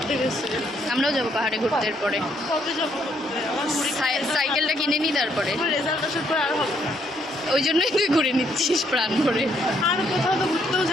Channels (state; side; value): normal; both; correlation 0.71